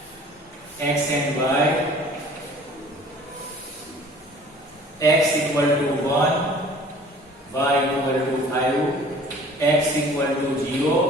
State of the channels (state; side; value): normal; both; correlation 0.49